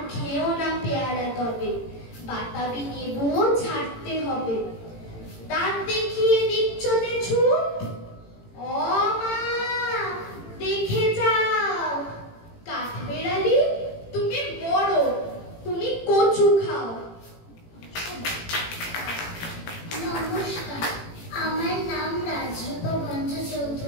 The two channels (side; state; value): right; late; 18 ms